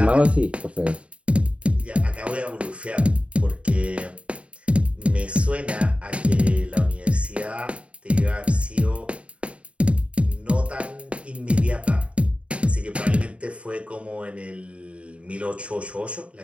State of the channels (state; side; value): late; left; 0.062 ms